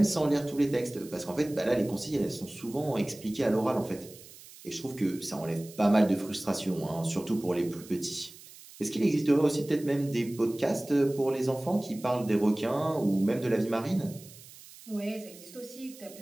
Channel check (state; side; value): noise; right; hiss, 19 dB below the sound